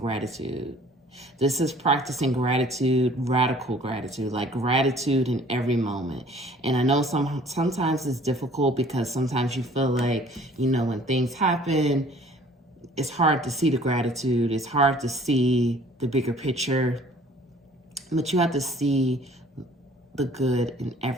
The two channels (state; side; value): normal; both; correlation 0.53